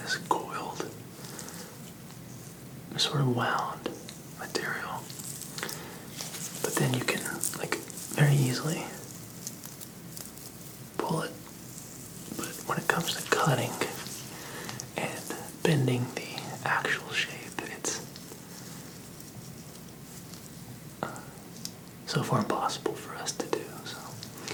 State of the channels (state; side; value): identical; both; correlation 1.00